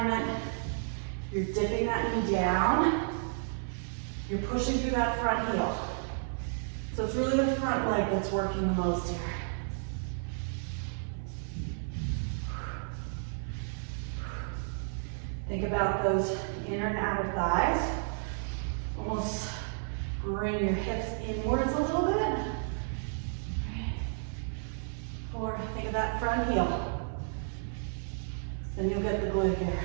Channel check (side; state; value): left; silent; 56 dB below the other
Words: You're dipping that knee down. You're pushing through that front heel. So it's really the front leg that's working the most here. Think about those inner and outer thighs. Almost bring your hips inwards a little bit. 4, think of that front heel. Then you'll get the glute here.